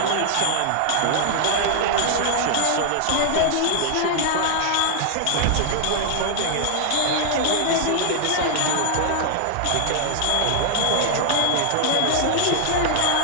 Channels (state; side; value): different; both; correlation -0.01